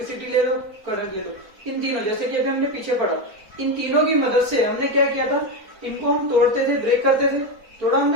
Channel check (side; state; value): left; late; 4.2 ms